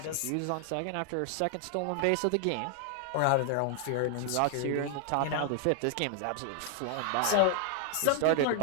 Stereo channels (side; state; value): both; different; correlation 0.00